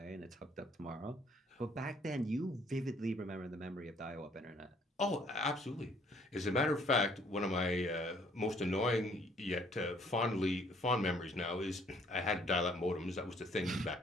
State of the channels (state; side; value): normal; both; correlation 0.62